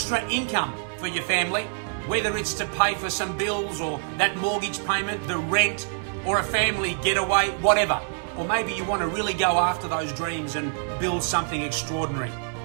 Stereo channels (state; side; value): silent; left; 61 dB below the other